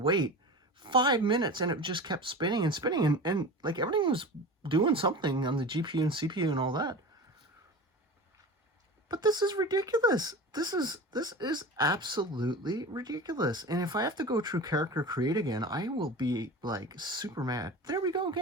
5 minutes and it just kept spinning and spinning, and like everything was doing something on the GPU and CPU and all that. But this is ridiculous. This is absolutely ridiculous. And if I have to go through character create again, I will be like super mad. There we go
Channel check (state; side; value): normal; both; correlation 0.32